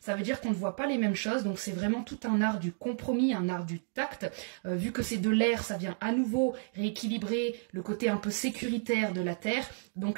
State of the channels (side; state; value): left; silent; digital silence